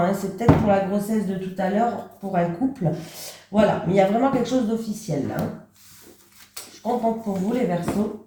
C'est peut-être pour la grossesse de tout à l'heure, pour un couple. Voilà, mais il y a vraiment quelque chose d'officiel là. Hein. Je suis contente pour vous, les Verseaux.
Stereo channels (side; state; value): both; identical; correlation 1.00